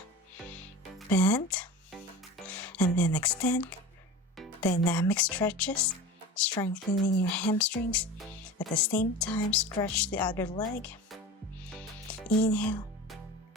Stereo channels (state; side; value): normal; both; correlation 0.33